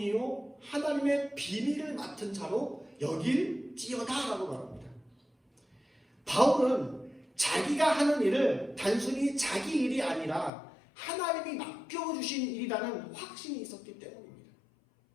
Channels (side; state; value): right; drops out; at 10.5 s